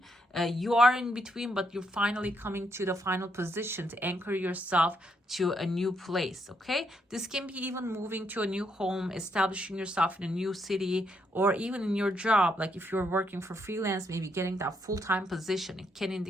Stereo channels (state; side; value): normal; both; correlation 0.76